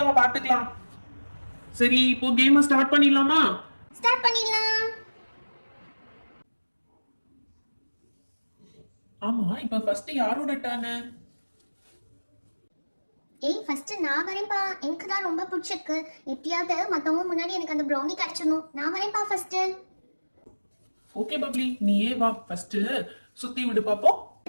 பாத்துக்கலாம். சரி, இப்போ கேம் ஸ்டார்ட் பண்ணிடலாமா? ஸ்டார்ட் பண்ணிடலாம். ஆமா, இப்போ ஃபர்ஸ்ட் யாரோட டர்ன்? ஃபர்ஸ்ட் நான் வரேன்ப்பா, எனக்கு தான் ரொம்ப பிடிச்சிருக்கு. எப்படியாவது மத்தவங்க முன்னாடி எனக்கு அந்த ப்ரௌனி கிடைச்சிடணும். நான் வரேன்ப்பா ஃபர்ஸ்ட். ஓகே பப்ளி, நீயே வா, ஃபர்ஸ்ட் சுத்தி விடு பாப்போம்.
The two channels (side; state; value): both; inverted; correlation -1.00